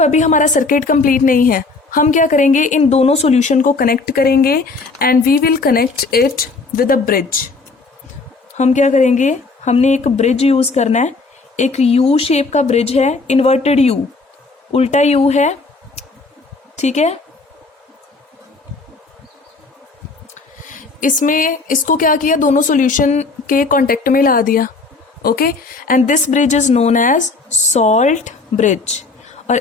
अभी हमारा सर्किट कंप्लीट नहीं है। हम क्या करेंगे? इन दोनों सॉल्यूशन को कनेक्ट करेंगे and we will connect it with a bridge. हम क्या करेंगे? हमने एक ब्रिज यूज करना है, एक यू शेप का ब्रिज है, इन्वर्टेड यू, उल्टा यू है। ठीक है, इसमें इसको क्या किया? दोनों सॉल्यूशन के कांटेक्ट में ला दिया। Okay, and this bridge is known as salt bridge. और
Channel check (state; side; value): quieter; right; 3.9 dB